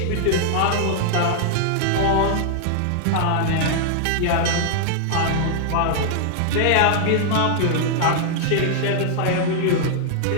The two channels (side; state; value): both; different; correlation -0.01